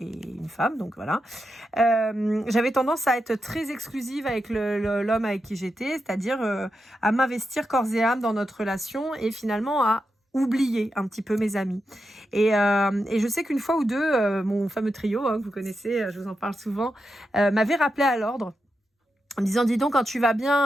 femme, donc voilà. J'avais tendance à être très exclusive avec l'homme avec qui j'étais, c'est-à-dire à m'investir corps et âme dans notre relation et finalement à oublier un petit peu mes amis. Et je sais qu'une fois ou deux, mon fameux trio, hein, que vous connaissez, je vous en parle souvent, m'avait rappelé à l'ordre. En me disant, dis donc, quand tu vas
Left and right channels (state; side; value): normal; both; correlation 0.87